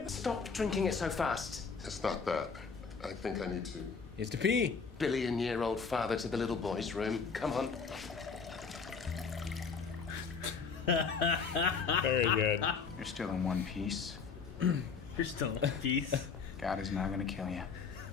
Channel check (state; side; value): quieter; right; 5.5 dB